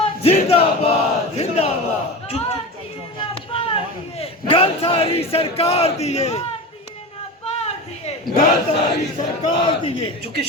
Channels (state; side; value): normal; both; correlation 0.27